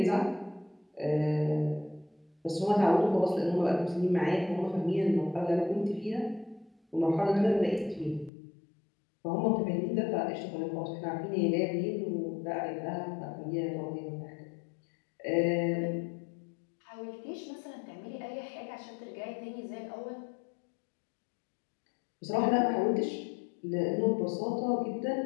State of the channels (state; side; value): drops out; right; at 8.3 s